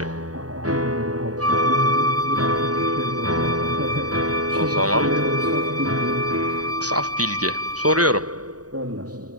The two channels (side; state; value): left; late; 0.68 ms